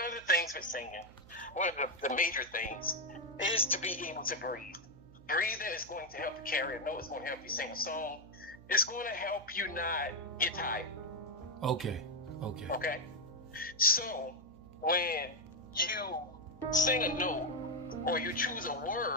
of the things with singing, one of the major things, is to be able to breathe. Breathing is going to help you carry a note. It's going to help you sing a song. It's going to help you not get tired. Okay. Okay? So, when you sing a note or you choose a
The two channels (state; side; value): noise; right; hum, 21 dB below the sound